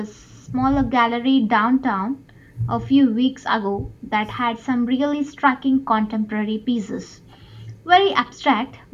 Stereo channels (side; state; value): both; identical; correlation 1.00